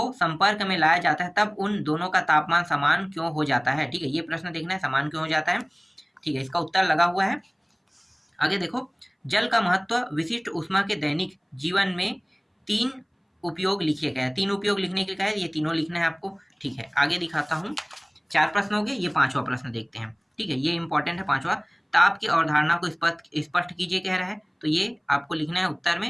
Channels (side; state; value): both; identical; correlation 1.00